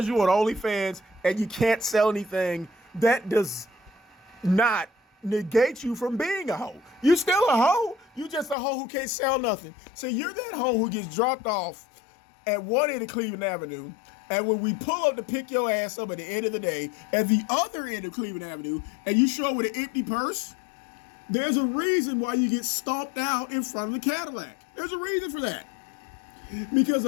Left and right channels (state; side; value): drops out; right; at 8.6 s